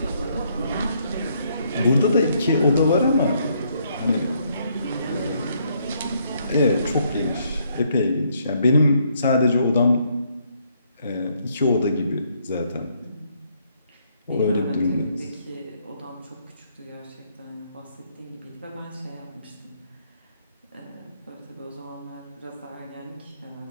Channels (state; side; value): inverted; both; correlation -0.71